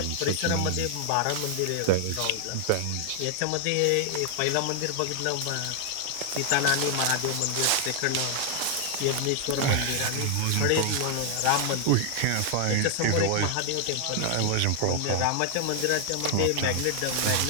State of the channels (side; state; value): both; different; correlation 0.00